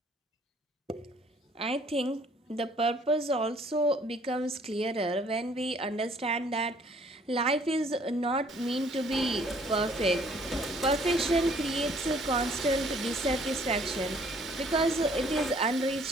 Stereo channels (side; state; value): both; normal; correlation 0.60